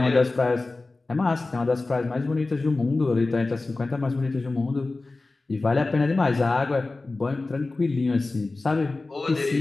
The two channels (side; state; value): right; quieter; 3.3 dB